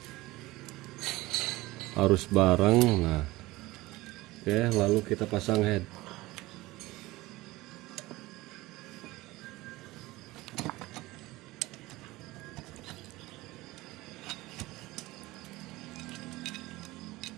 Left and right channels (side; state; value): left; quieter; 19.6 dB